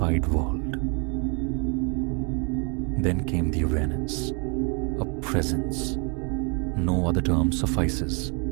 world. Then came the awareness, a presence. No other term suffices.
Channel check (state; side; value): quieter; left; 35.3 dB